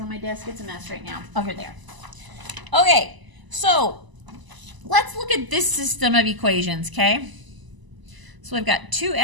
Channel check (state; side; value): late; left; 1.0 ms